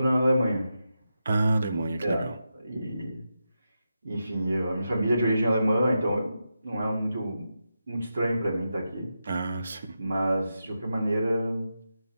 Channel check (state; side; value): inverted; both; correlation -0.88